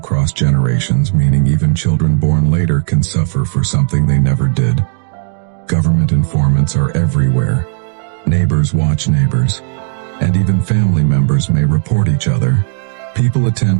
generations, meaning even children born later can suffer for something they never did. Government informants are everywhere. Neighbors watch neighbors, and even family members may report each other. People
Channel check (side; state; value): left; silent; 67 dB below the other